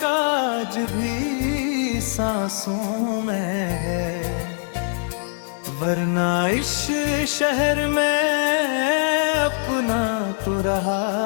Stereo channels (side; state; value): right; silent; digital silence